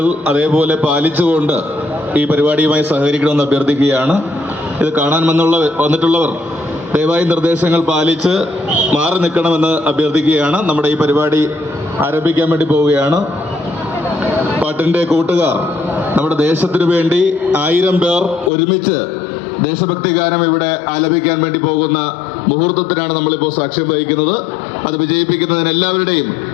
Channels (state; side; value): drops out; right; at 18.5 s